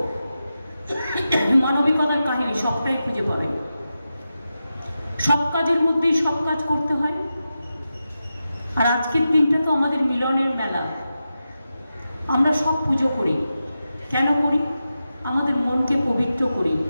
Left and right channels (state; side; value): inverted; both; correlation -0.91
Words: মানবিকতার কাহিনী সবটাই খুঁজে পাবেন। সব কাজের মধ্যেই সব কাজ করতে হয়। আর আজকের দিনটা তো আমাদের মিলনের মেলা। আমরা সব পুজো করি। কেন করি? আমাদের মনকে পবিত্র করি,